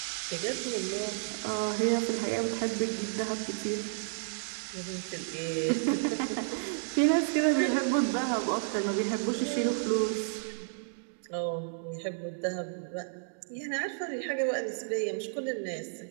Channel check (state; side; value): silent; left; digital silence